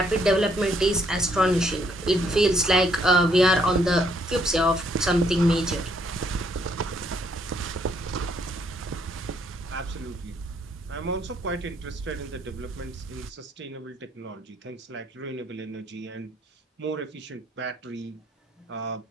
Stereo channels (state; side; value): normal; both; correlation 0.69